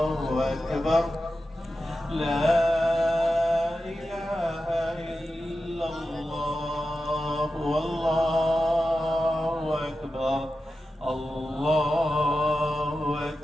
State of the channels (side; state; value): both; normal; correlation 0.92